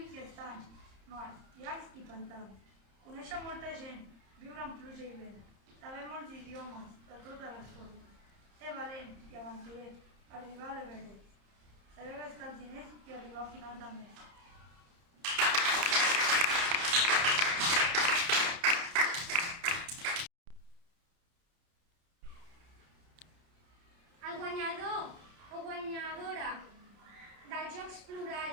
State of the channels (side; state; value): left; late; 30 ms